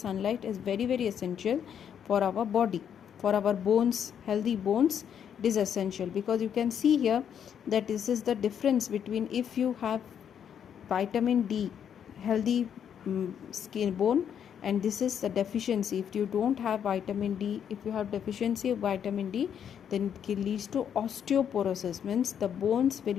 is very very essential for our body, for our bones, healthy bones. It is essential, because you can see here that this is the difference between if you have vitamin D, healthy skin bone, and this is the deficiency. If you don't have vitamin D, if you have deficiency of vitamin D, then it leads to osteoporosis, means the bones will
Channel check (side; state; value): right; quieter; 8.5 dB